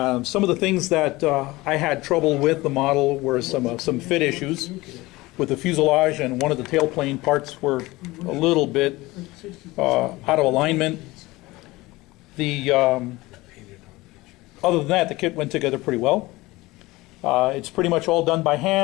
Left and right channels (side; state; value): right; quieter; 20.4 dB